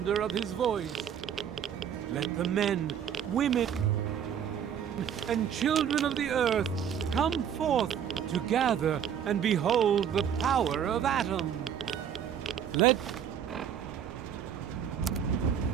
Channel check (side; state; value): left; quieter; 8.7 dB